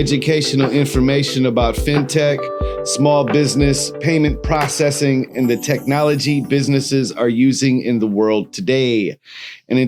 information about fintech, small business, payment processing, and the technology businesses are using in the world today. And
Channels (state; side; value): identical; both; correlation 1.00